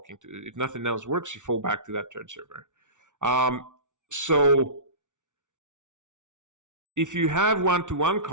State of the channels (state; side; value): late; left; 0.86 ms